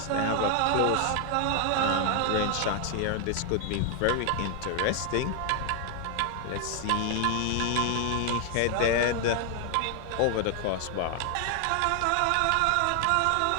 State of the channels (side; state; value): both; different; correlation 0.00